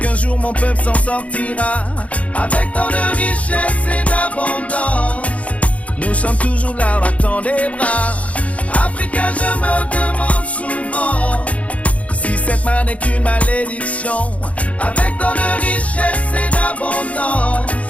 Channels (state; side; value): late; right; 0.066 ms